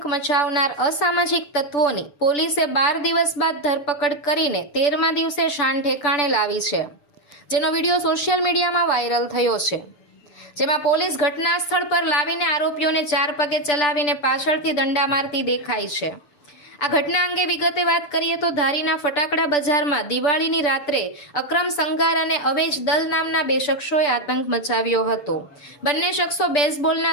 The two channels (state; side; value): late; right; 6.9 ms